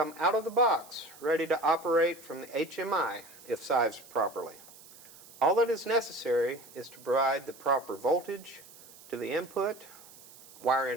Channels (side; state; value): right; noise; hiss, 20 dB below the sound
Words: out of the box ready to operate from the HMI if sized properly. All that is necessary is to provide the proper voltage to the input, wire